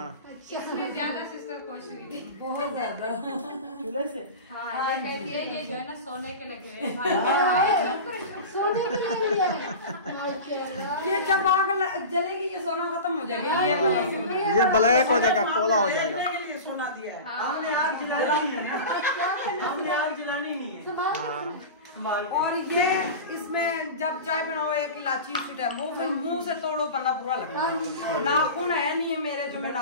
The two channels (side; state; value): both; inverted; correlation -0.30